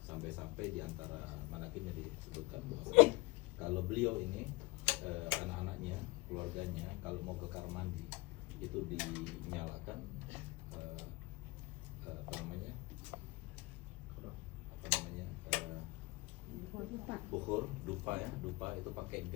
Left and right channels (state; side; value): quieter; right; 22.9 dB